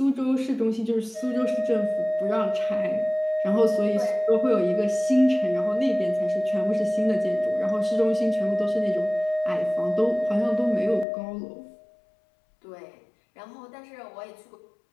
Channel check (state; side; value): drops out; right; at 11.1 s